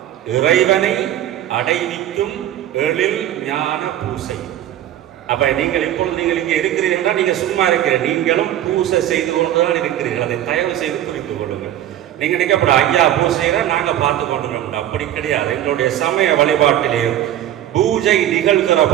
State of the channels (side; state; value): left; quieter; 12.1 dB